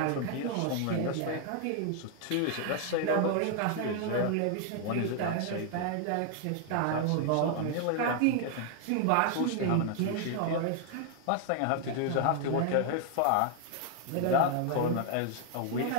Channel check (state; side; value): different; both; correlation 0.00